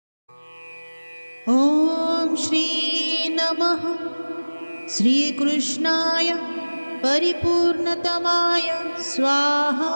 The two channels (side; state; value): both; inverted; correlation -1.00